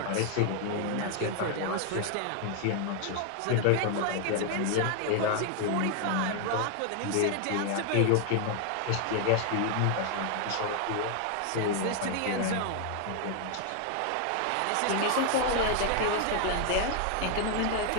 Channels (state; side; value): different; both; correlation 0.00